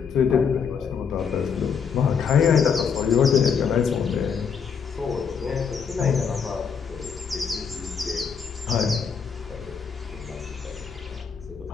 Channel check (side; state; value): right; quieter; 6.5 dB